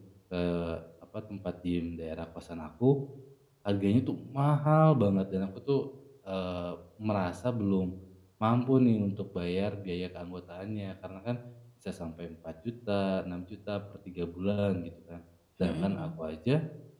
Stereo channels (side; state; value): both; identical; correlation 1.00